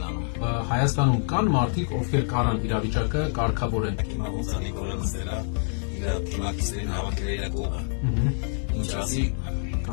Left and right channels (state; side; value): silent; right; digital silence